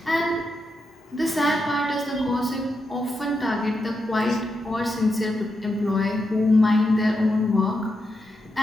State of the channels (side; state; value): both; normal; correlation 0.85